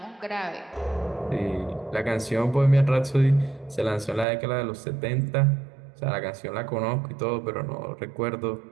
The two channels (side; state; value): left; drops out; at 4.2 s